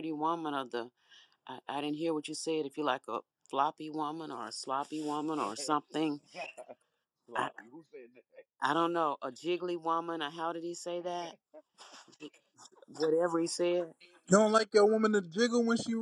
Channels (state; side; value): identical; both; correlation 1.00